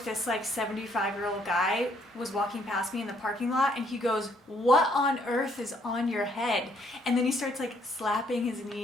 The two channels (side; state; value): both; normal; correlation 0.68